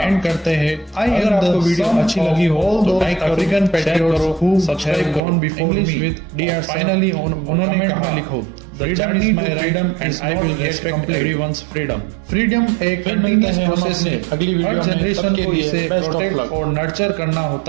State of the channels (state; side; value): drops out; left; at 5.2 s